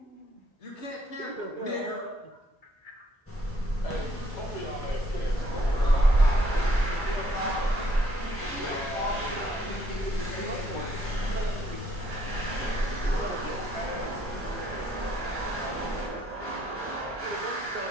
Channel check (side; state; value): both; normal; correlation 0.67